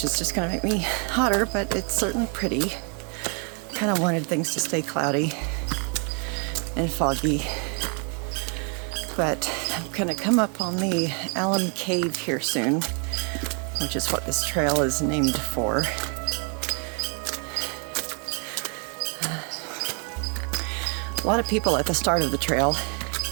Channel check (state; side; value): quieter; left; 38.5 dB